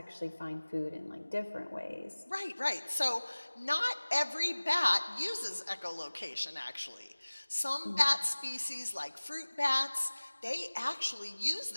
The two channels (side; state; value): both; inverted; correlation -1.00